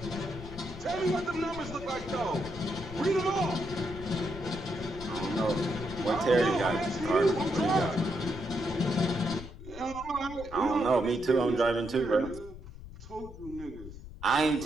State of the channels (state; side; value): noise; left; rumble, 14 dB below the sound